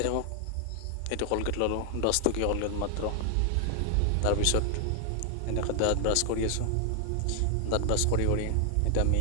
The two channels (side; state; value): both; different; correlation 0.00